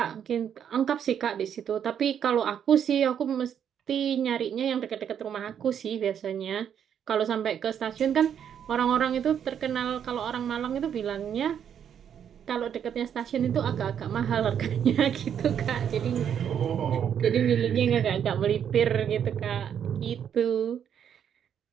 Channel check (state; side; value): quieter; left; 8.7 dB